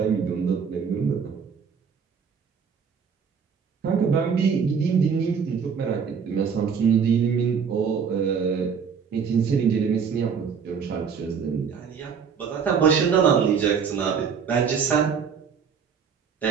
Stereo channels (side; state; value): left; quieter; 6.5 dB